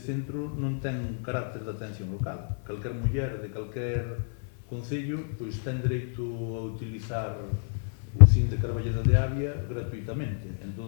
centro non ten carácter de atención local. Calquer muller de calquer concello pois ten dereito a utilizar o CIN de Carballeda de Avia gratuitamente.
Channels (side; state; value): right; silent; digital silence